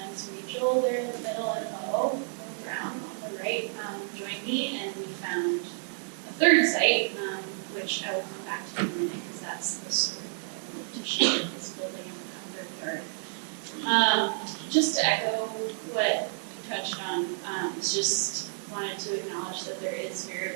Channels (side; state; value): left; silent; digital silence